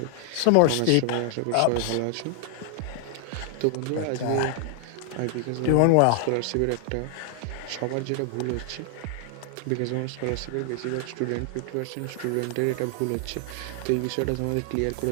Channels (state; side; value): different; both; correlation 0.00